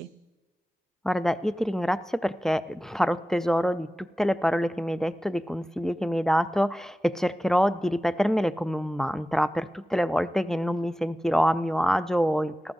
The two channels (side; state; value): both; normal; correlation 0.95